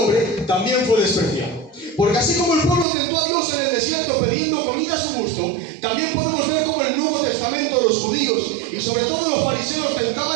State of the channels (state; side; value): drops out; left; at 2.9 s